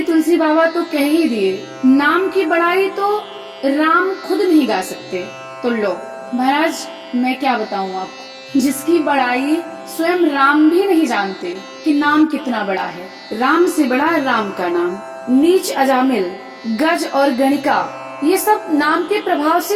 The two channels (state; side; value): identical; both; correlation 1.00